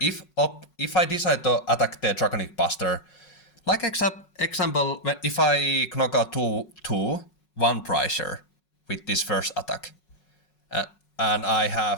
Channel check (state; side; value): late; right; 5.5 ms